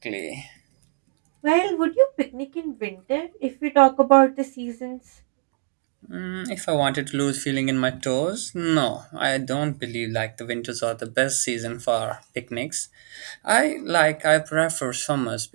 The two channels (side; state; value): left; silent; 62 dB below the other